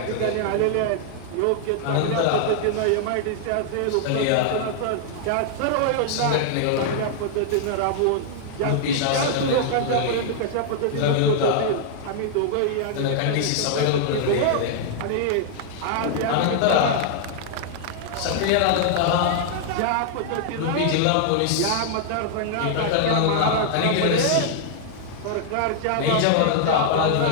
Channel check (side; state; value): both; different; correlation -0.01